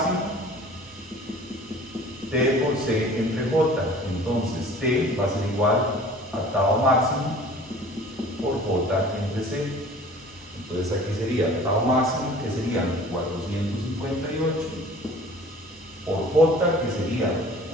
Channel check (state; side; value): normal; both; correlation 0.47